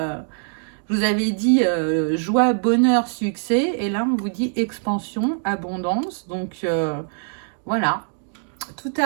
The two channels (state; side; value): silent; left; digital silence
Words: je vous avais dit joie, bonheur, succès. Et là, on vous dit expansion, abondance. Donc, voilà. Tout